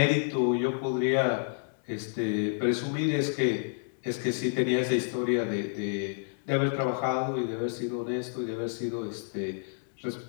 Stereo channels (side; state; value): right; silent; digital silence